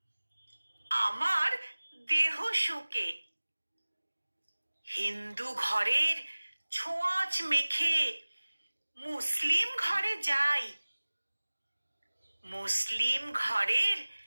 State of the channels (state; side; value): inverted; both; correlation -1.00